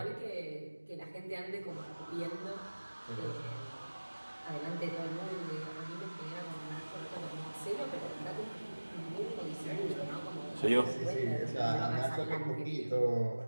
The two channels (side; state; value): both; inverted; correlation -1.00